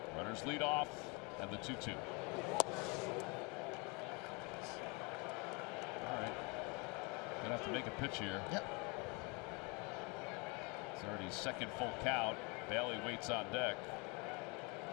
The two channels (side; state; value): right; quieter; 30.1 dB